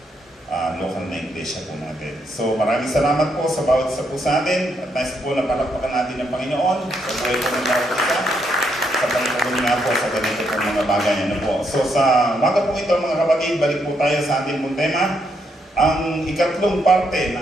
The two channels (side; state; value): both; normal; correlation 0.77